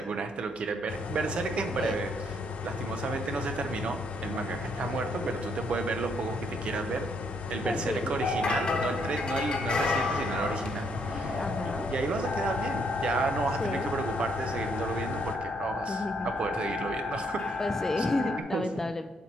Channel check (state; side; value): normal; both; correlation 0.72